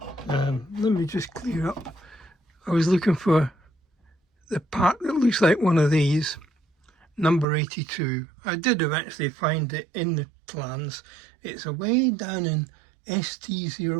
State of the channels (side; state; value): left; drops out; at 7.5 s